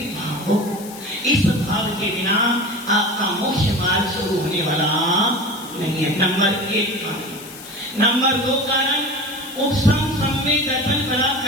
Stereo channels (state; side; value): noise; left; hiss, 16 dB below the sound